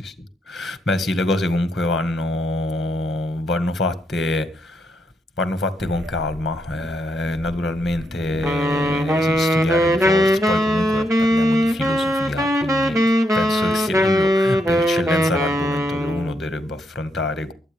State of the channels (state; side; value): normal; both; correlation 0.78